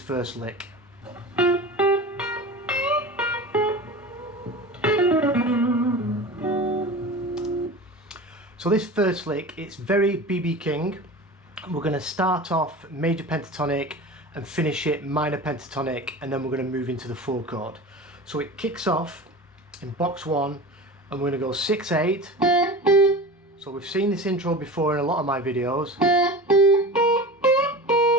lick. So this first lick, it's very B.B. King. We're going to start off major pentatonic and finish it minor pentatonic, and then we're going to move into the 4 chord. So it kicks off in box 1 and we're going to go 6/8. So we've seen this intro before in a lot of my videos.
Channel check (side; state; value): both; normal; correlation 0.33